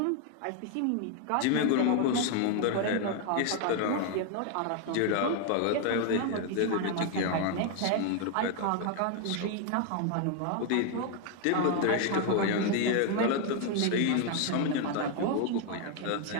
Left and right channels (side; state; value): both; different; correlation 0.00